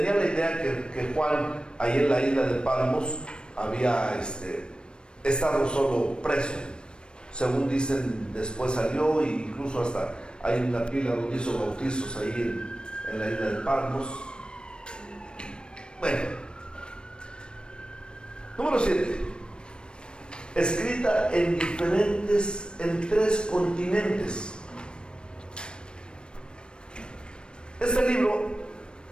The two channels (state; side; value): late; right; 0.053 ms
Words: la idea que Juan ahí en la isla de Patmos había estado solo preso. Según dicen, después salió, e incluso hasta hay una pila donde hizo bautizos ahí en la isla de Patmos. Bueno, número 7, escrita en 3 continentes. Este libro